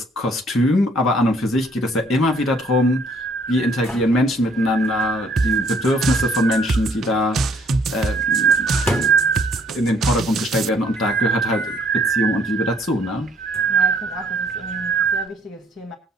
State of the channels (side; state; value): both; normal; correlation 0.62